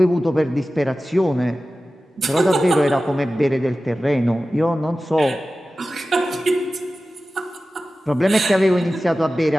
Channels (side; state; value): both; normal; correlation 0.95